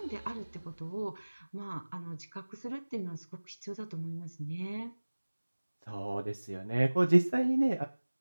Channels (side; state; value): both; inverted; correlation -1.00